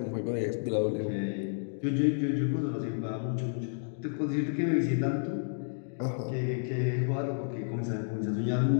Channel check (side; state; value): right; silent; digital silence